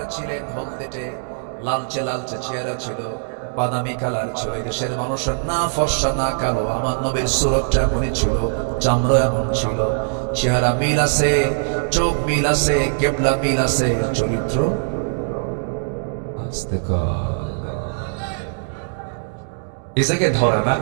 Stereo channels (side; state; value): left; silent; digital silence